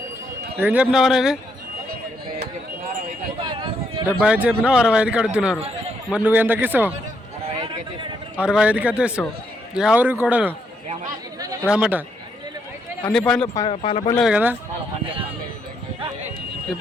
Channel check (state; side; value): normal; both; correlation 0.75